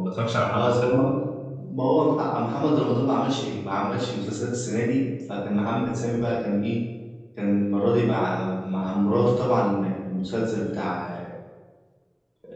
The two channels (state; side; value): identical; both; correlation 1.00